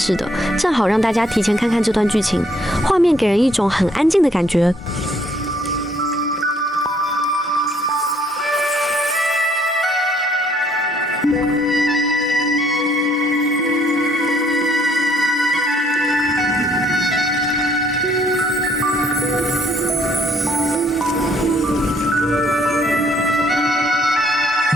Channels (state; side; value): normal; both; correlation 0.65